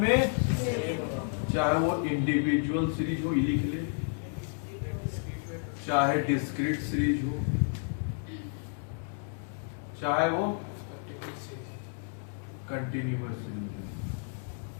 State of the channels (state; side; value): silent; right; 57 dB below the other